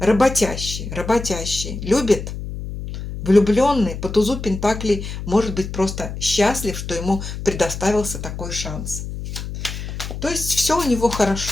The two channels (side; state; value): left; noise; hum, 7 dB below the sound